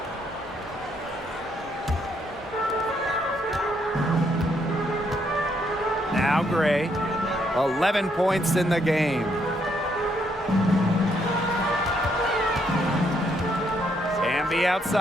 Now Gray, 11 points in the game. Hamby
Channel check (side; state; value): both; normal; correlation 0.73